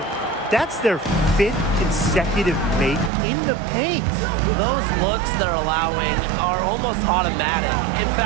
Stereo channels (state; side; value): drops out; left; at 3.1 s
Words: That's their 5th consecutive make in the paint. Those looks they're allowing are almost automatic. In